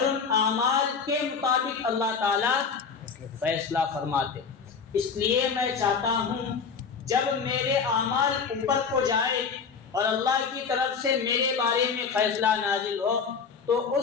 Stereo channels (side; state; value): right; quieter; 5.8 dB